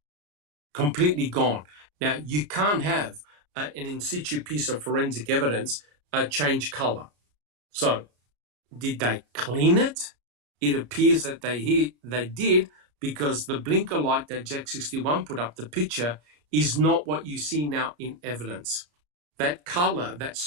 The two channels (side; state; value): left; late; 34 ms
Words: completely gone. Now, you can't have an in situ piece of forensic evidence change color. So, did they clean it? It appears that they did, because the blinker light that Jack 61 put up, the picture, is not what you see now in evidence. That color, that